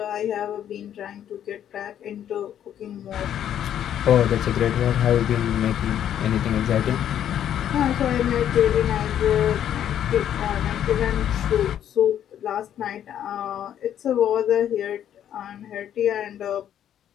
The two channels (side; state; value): right; quieter; 10.2 dB